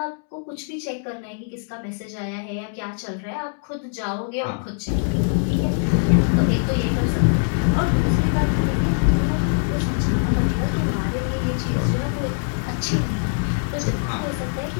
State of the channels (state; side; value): silent; right; 64 dB below the other